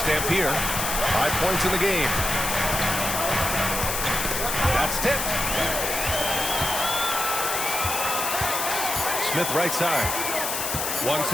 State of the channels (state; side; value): noise; left; hiss, 2 dB below the sound